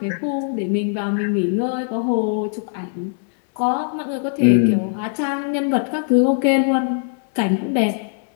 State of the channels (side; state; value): right; silent; digital silence